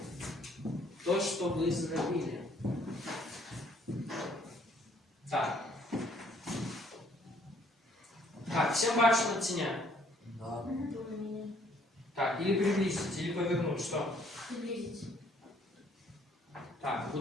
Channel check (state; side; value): normal; both; correlation 0.63